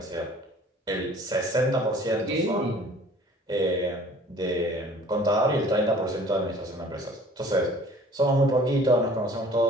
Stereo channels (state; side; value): normal; both; correlation 0.50